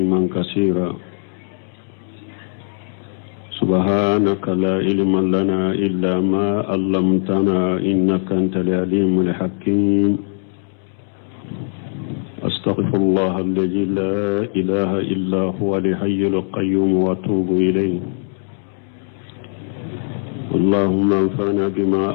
كثيرا. سبحانك لا علم لنا إلا ما علمتنا إنك أنت العليم الحكيم. أستغفر الله الذي لا إله إلا هو الحي القيوم وأتوب إليه. اللهم انفعنا بما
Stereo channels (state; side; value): silent; right; digital silence